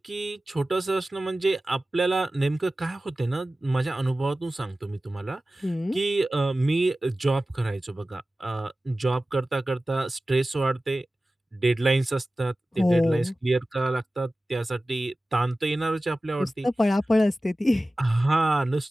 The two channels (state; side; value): normal; both; correlation 0.96